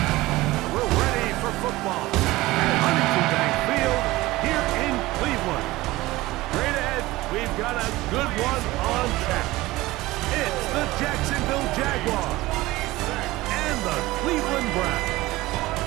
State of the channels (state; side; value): quieter; left; 18.9 dB